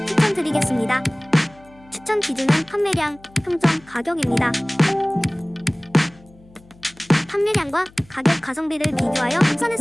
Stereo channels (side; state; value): left; noise; hum, 26 dB below the sound